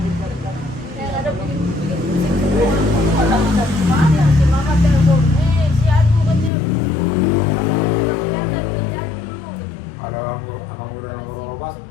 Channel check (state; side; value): drops out; right; at 6.5 s